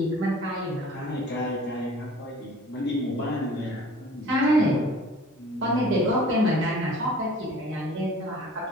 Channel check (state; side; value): normal; both; correlation 0.47